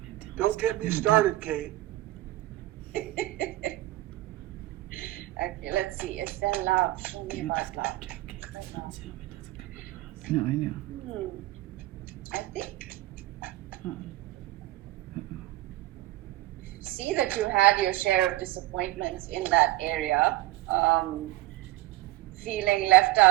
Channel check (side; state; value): left; quieter; 17.5 dB